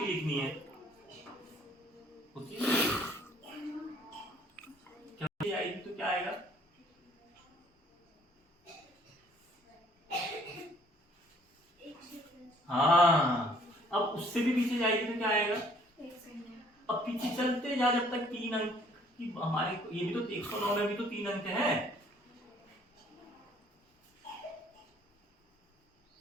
लिखनी है। होती है क्या आएगी तो क्या आएगा? हाँ, अब उससे भी पीछे जाएगी तो क्या आएगा? अब पीछे चलते जा जब तक 3 अंक की हमारे, ये भी तो 109 में भी तो 3 अंक है।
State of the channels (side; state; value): both; normal; correlation 0.60